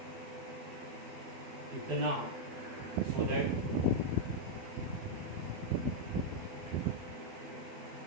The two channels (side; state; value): left; late; 12 ms